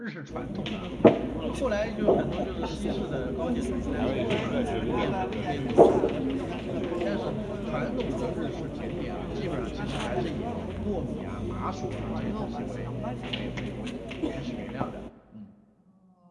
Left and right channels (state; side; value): identical; both; correlation 1.00